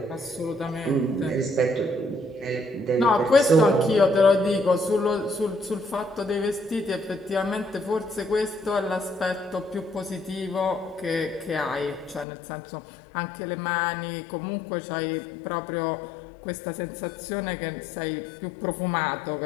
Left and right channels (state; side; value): drops out; right; at 12.2 s